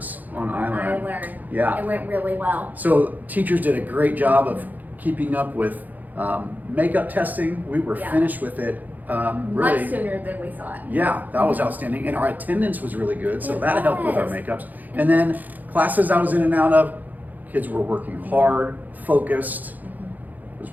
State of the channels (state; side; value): late; left; 0.083 ms